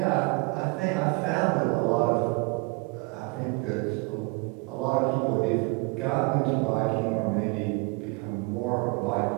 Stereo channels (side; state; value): left; quieter; 29.2 dB